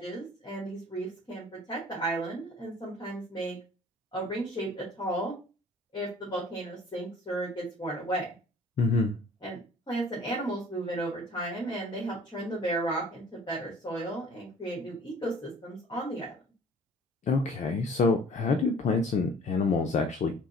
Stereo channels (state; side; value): normal; both; correlation 0.50